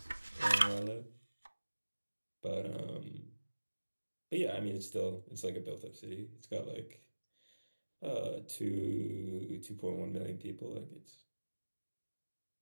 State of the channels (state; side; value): inverted; both; correlation -1.00